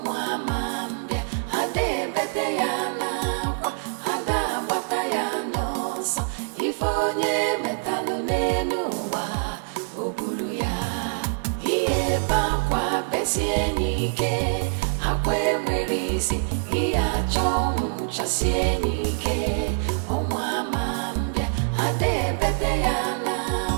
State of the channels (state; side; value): silent; left; 62 dB below the other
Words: ama mbịa ada ebete ya n'akwa ada agbata ya n'ọsọ ife onye metalụ n'elu ụwa o buru ya ihe ebe akwa besie n'ike akwa enwere isi ihe achọ ọnwụ chasie n'ike ọnwa ama mbịa ada ebete ya